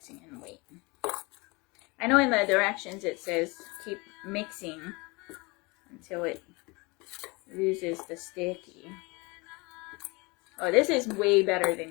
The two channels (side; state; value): right; quieter; 26.4 dB